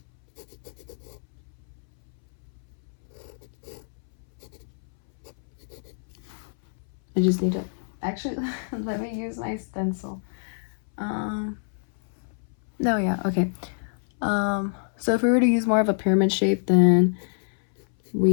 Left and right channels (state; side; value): silent; right; 61 dB below the other